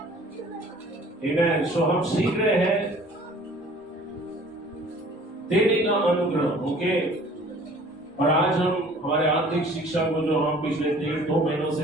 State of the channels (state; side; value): normal; both; correlation 0.51